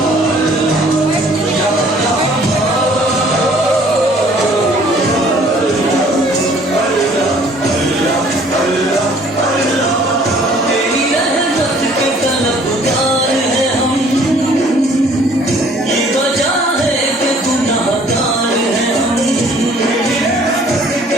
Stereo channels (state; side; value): normal; both; correlation 0.56